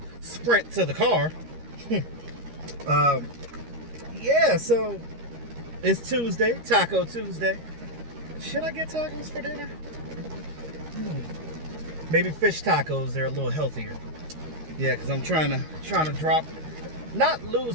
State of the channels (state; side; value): late; left; 13 ms